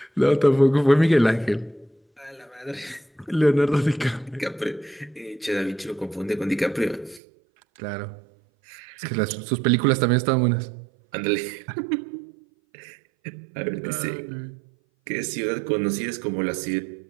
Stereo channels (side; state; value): left; drops out; at 7.2 s